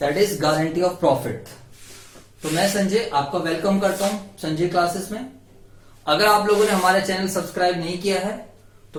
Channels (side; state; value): both; identical; correlation 1.00